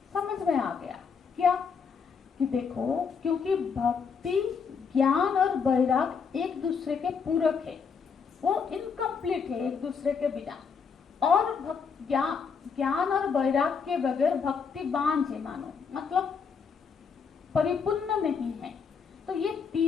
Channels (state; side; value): quieter; right; 5.9 dB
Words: समझ में आ गया। क्या? कि देखो, क्योंकि भक्ति, ज्ञान और वैराग एक दूसरे के पूरक है, वो इनकम्प्लीट है एक दूसरे के बिना। और ज्ञान और वैराग के बगैर भक्ति बांझ है, मानो मतलब परिपूर्ण नहीं है। तो ये